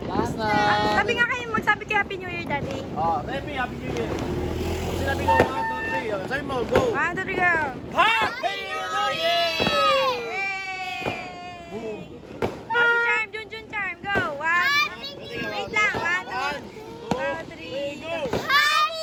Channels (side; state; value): both; identical; correlation 1.00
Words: Sabi nga kayo, magsabi kayo Happy New Year, Daddy. Happy New Year. Sinabi ko, 1, 2, 3. Sabi mo, go. 1, 2, 3, go! Happy New Year! Boom. Happy Charm, Jun Charm, go! 1, wait lang, 1, 2, 3, go!